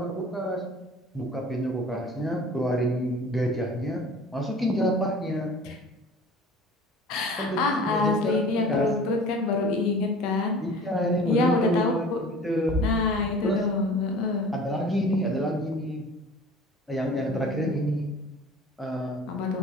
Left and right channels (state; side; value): normal; both; correlation 0.43